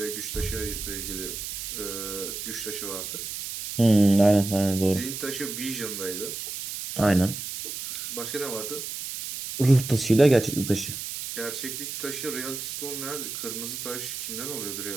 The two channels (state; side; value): noise; right; hiss, 7 dB below the sound